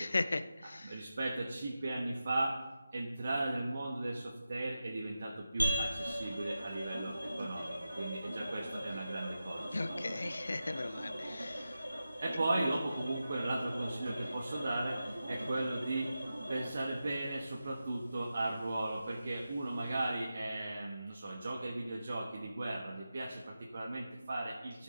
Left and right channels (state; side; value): inverted; both; correlation -0.91